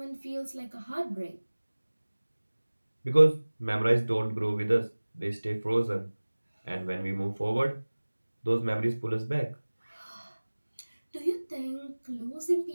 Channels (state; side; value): inverted; both; correlation -1.00